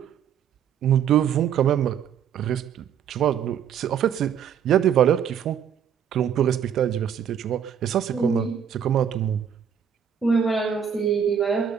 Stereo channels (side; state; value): left; quieter; 8.3 dB